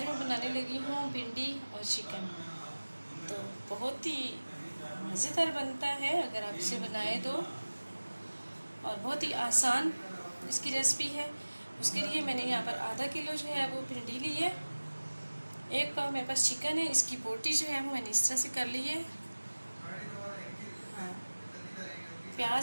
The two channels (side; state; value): both; inverted; correlation -1.00